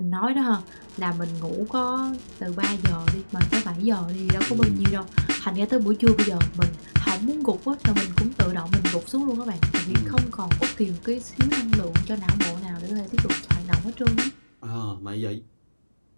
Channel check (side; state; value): both; inverted; correlation -1.00